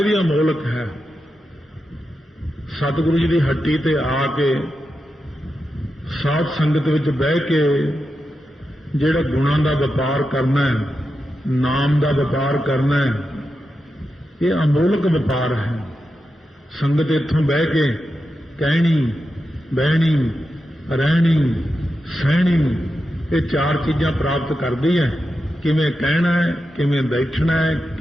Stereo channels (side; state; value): both; normal; correlation 0.89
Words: ਵੀ ਅਮੋਲਕ ਹੈ। ਸਤਿਗੁਰੂ ਜੀ ਦੀ ਹੱਟੀ ਤੇ ਆ ਕੇ ਸਾਧ ਸੰਗਤ ਵਿੱਚ ਬਹਿ ਕੇ ਜਿਹੜਾ ਗੁਣਾਂ ਦਾ ਵਪਾਰ ਕਰਨਾ ਹੈ, ਨਾਮ ਦਾ ਵਪਾਰ ਕਰਨਾ ਹੈ, ਇਹ ਅਮੋਲਕ ਵਪਾਰ ਹੈ। ਸੰਗਤ ਇੱਥੋਂ ਬਹਿ ਕੇ ਕਹਿਣੀ, ਬਹਿਣੀ, ਰਹਿਣੀ, ਸਹਿਣੀ, ਇਹ 4 ਚੀਜ਼ਾਂ ਪ੍ਰਾਪਤ ਕਰਦੀ ਹੈ। ਕਿਵੇਂ ਕਹਿਣਾ ਹੈ, ਕਿਵੇਂ ਬੈਠਣਾ ਹੈ,